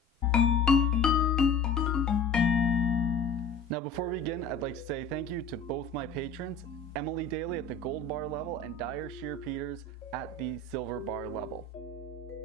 Now before we begin, I'd like to say thank you to both my patrons, Emily Daly at the gold bar level and Dyre Shear Peters at the silver bar level.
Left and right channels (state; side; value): quieter; right; 3.8 dB